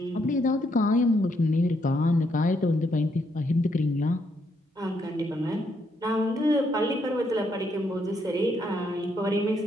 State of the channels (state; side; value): normal; both; correlation 0.75